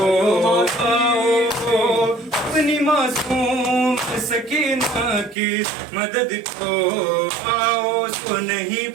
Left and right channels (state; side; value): drops out; left; at 5.4 s